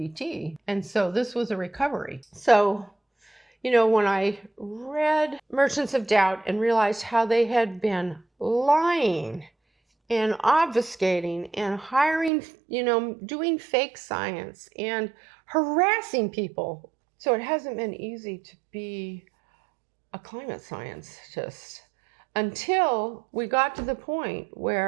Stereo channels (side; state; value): left; drops out; at 12.3 s